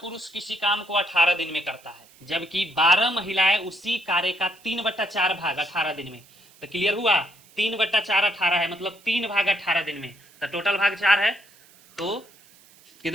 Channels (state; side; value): noise; right; hiss, 27 dB below the sound